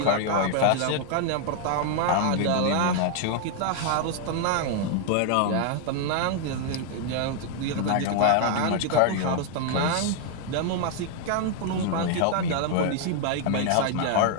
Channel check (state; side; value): different; both; correlation 0.00